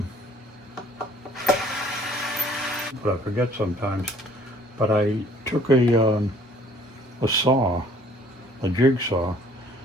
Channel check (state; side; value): normal; both; correlation 0.57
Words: But I forget sometimes. But I took a saw, a jigsaw.